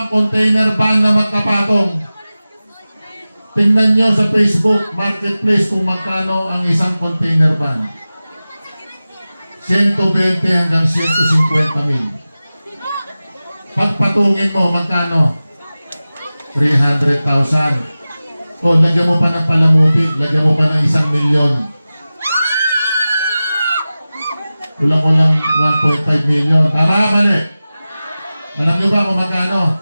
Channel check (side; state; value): both; inverted; correlation -0.96